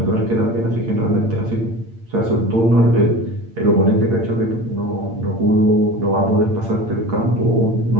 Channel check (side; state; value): left; late; 8.8 ms